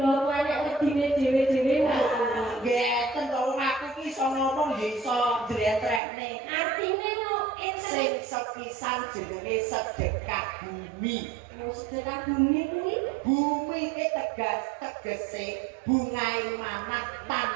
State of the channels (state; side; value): drops out; left; at 6.0 s